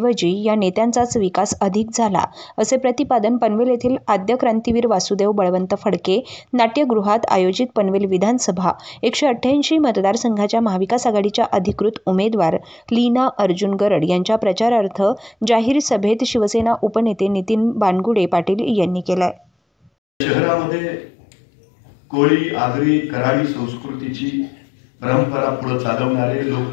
या नेत्यांचाच विकास अधिक झाला, असे प्रतिपादन पनवेल येथील आद्य क्रांतीवीर वासुदेव बळवंत फडके नाट्यगृहात आयोजित पनवेल विधानसभा 188 मतदारसंघाच्या महाविकास आघाडीच्या अधिकृत उमेदवार लीना अर्जुन गरड यांच्या प्रचारार्थ जाहीर सभेत शिवसेना उपनेते नितीन बानगुडे पाटील यांनी केलाय। शहरामध्ये कोळी, आगरी, कराडी संस्कृतीची परंपरा पुढे चालवणारे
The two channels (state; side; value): drops out; right; at 19.9 s